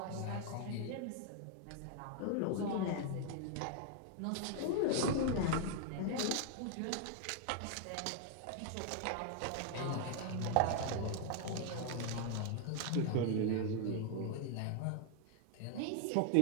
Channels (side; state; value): both; different; correlation 0.00